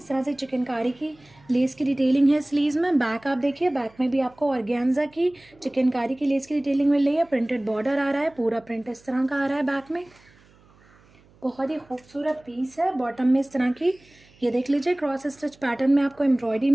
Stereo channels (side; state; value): right; noise; hum, 29 dB below the sound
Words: तरह से चिकनकारी की लेस की डिटेलिंग है स्लीव्स में। बैक आप देखिए, बैक में भी आपको ऑर्गेन्जा की चिकनकारी की लेस की डिटेलिंग मिल रही है। प्रिंटेड बॉर्डर आ रहा है, पूरा प्रिंट इस तरह का आ रहा है बैक में। बहुत ही खूबसूरत पीस है। बॉटम में इस तरह की ये देख लीजिए क्रॉस स्टिच पैटर्न में आपको एम्ब्रॉयडरी